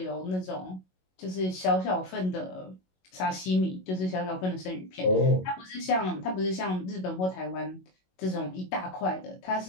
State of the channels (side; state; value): right; late; 22 ms